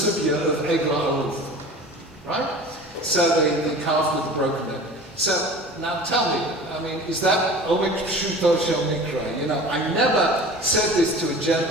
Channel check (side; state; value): both; normal; correlation 0.39